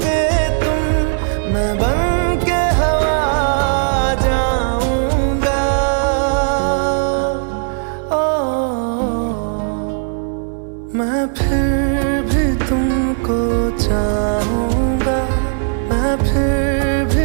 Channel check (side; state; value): left; silent; 68 dB below the other